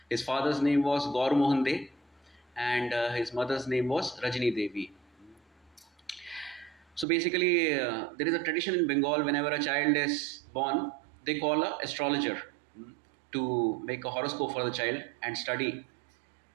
His father's name was Gaur Mohan De, and his mother's name was Rajini Devi. So basically, there is a tradition in Bengal, whenever a child is born, they call an astrologer to make a horoscope for the child and study,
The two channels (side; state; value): left; drops out; at 7.1 s